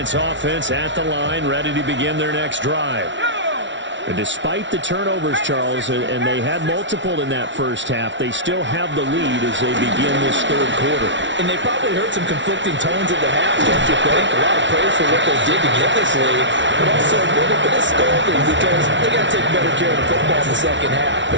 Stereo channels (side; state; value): left; late; 0.54 ms